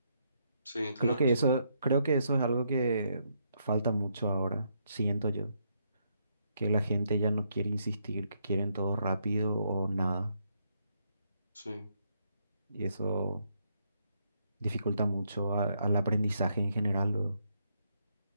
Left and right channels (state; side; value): inverted; both; correlation -0.76